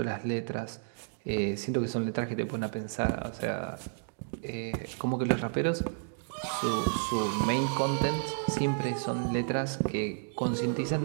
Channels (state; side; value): silent; left; digital silence